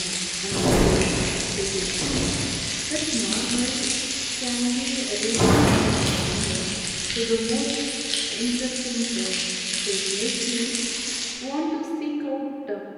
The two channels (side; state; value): both; identical; correlation 1.00